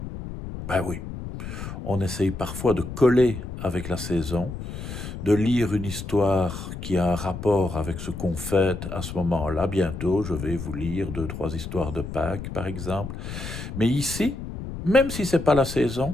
Ben oui, on essaye parfois de coller avec la saison, de lire une histoire qui a un rapport avec ce qu'on fête à ce moment-là. Bientôt, je vais vous lire deux, trois histoires de Pâques, par exemple. Mais ici, même si c'est pas la saison,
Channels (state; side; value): noise; left; rumble, 8 dB below the sound